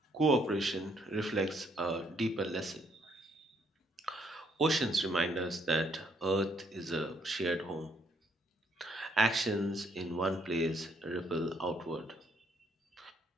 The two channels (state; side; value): normal; both; correlation 0.70